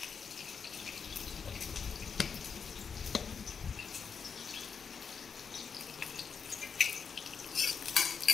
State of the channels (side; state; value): right; quieter; 6.2 dB